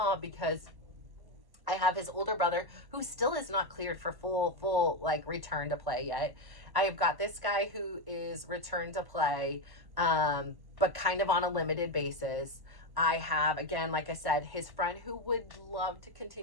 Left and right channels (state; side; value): late; left; 1.1 ms